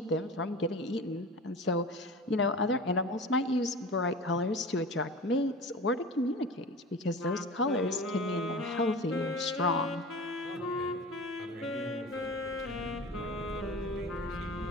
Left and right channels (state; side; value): normal; both; correlation 0.34